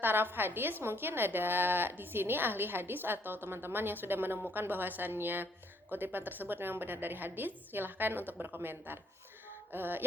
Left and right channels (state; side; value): normal; both; correlation 0.68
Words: hadis mungkin ada di sini ahli hadis atau teman-teman yang sudah menemukan bahwasannya kutipan tersebut memang benar dari hadis, silahkan untuk berkomentar.